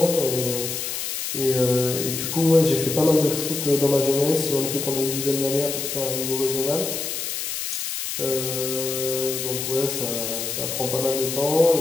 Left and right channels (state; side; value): noise; left; hiss, 4 dB below the sound